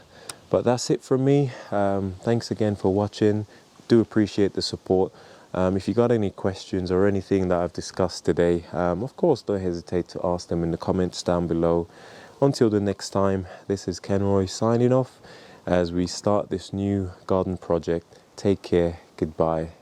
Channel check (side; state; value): both; identical; correlation 1.00